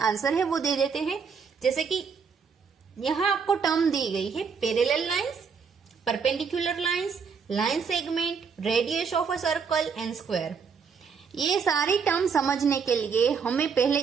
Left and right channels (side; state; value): left; quieter; 6.0 dB